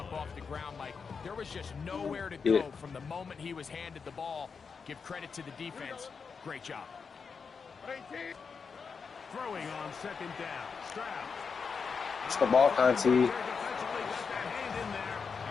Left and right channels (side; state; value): right; quieter; 5.6 dB